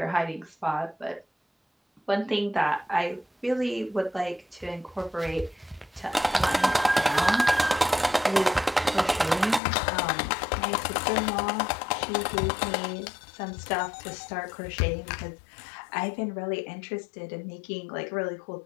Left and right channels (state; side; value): drops out; right; at 9.6 s